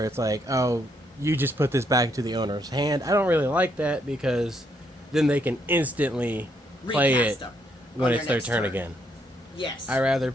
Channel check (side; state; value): both; normal; correlation 0.74